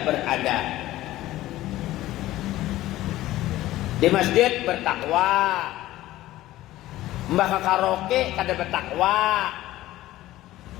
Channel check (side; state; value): right; quieter; 15.7 dB